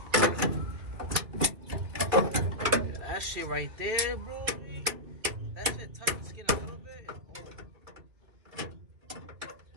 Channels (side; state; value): left; late; 2.8 ms